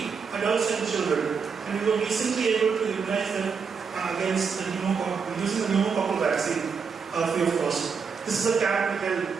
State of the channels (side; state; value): left; quieter; 5.8 dB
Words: adults and children, and we were recently able to immunize them against the pneumococcal, using the pneumococcal vaccine free of cost. This is a camp we held